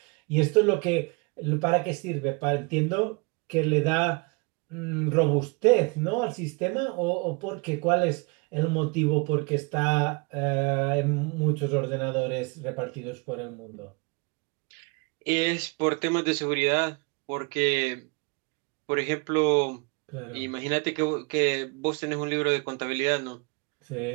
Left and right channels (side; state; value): left; quieter; 30.5 dB